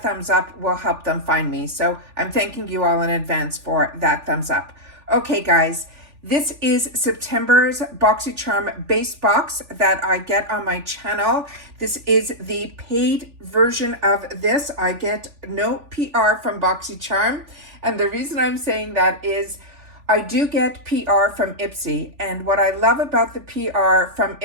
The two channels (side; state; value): left; late; 3.4 ms